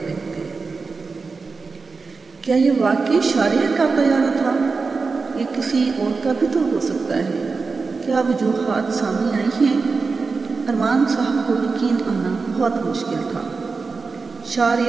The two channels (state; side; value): quieter; left; 4.5 dB